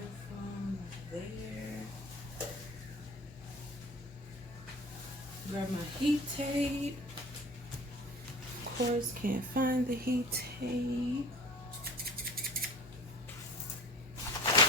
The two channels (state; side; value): normal; both; correlation 0.40